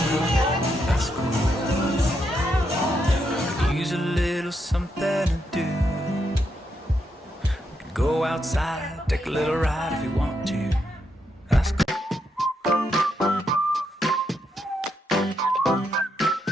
that's cool. I could use a little something to do. We could go outside, take a little ride if you want to. That's cool.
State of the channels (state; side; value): normal; both; correlation 0.80